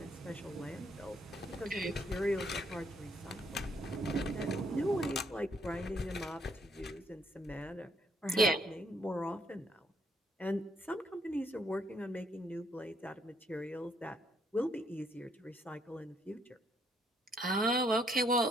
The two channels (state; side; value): normal; both; correlation 0.70